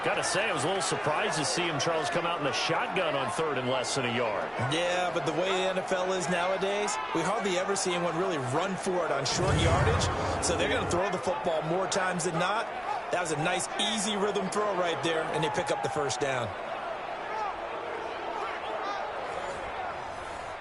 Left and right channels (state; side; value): identical; both; correlation 1.00